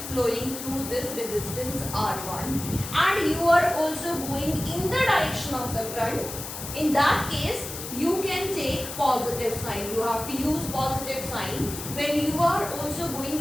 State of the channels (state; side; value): noise; left; hiss, 9 dB below the sound